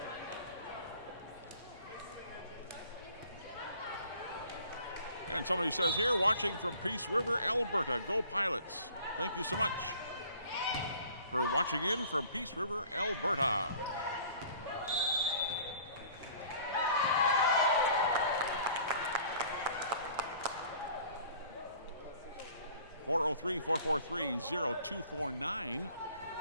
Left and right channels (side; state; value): both; inverted; correlation -0.51